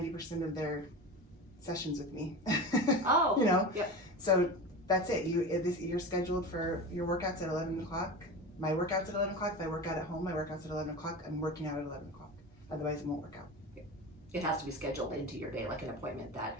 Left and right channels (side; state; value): both; normal; correlation 0.28